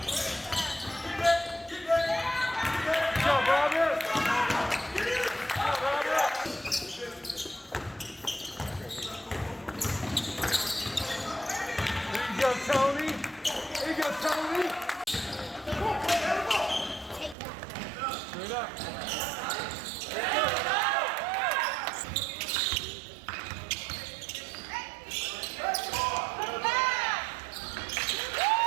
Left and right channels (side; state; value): left; drops out; at 17.4 s